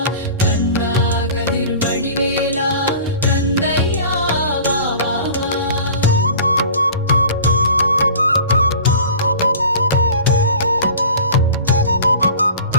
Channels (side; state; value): both; inverted; correlation -0.41